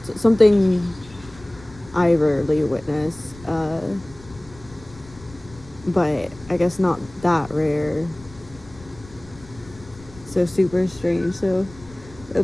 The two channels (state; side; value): noise; left; rumble, 20 dB below the sound